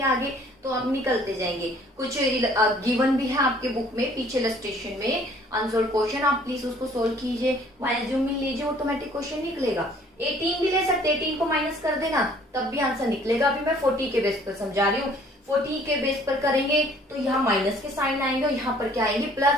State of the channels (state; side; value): normal; both; correlation 0.56